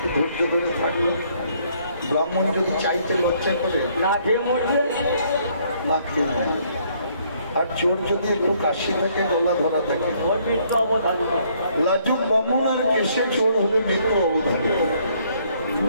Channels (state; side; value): inverted; both; correlation -0.66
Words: ধৈর্য ধরে থাকলে ব্রাহ্মণ যদি চাইতে লজ্জা করে না খেয়ে মরবে, না খেয়ে মরবে। আর চোর যদি একটু কাশি থাকে, গলা ধরা থাকে, লাজুক ব্রাহ্মণ আর কেশে চোর হলে মৃত্যু অবধারিত।